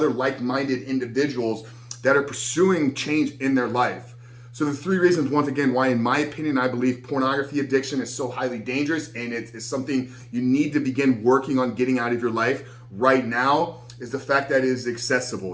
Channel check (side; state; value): both; identical; correlation 1.00